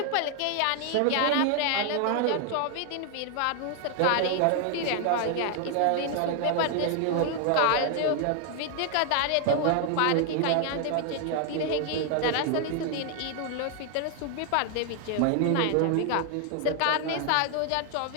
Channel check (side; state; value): both; different; correlation 0.00